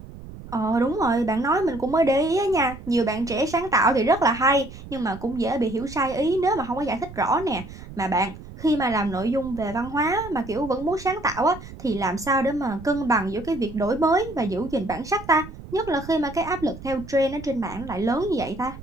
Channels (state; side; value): noise; right; rumble, 15 dB below the sound